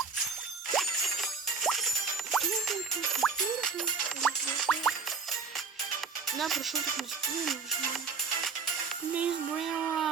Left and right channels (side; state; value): left; quieter; 5.1 dB